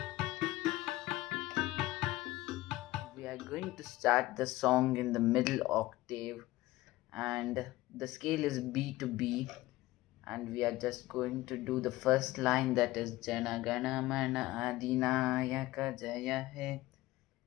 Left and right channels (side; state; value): right; quieter; 17.9 dB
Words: We are going to start the song in the middle octave and the scale is B to B, and we are just going to do the first line, that is Janaganamana Adinayaka Jaya He,